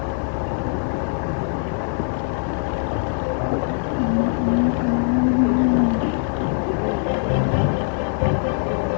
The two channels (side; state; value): right; silent; 57 dB below the other